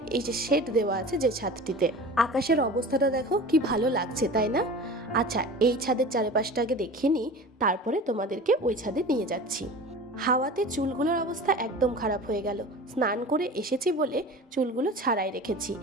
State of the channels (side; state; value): both; normal; correlation 0.36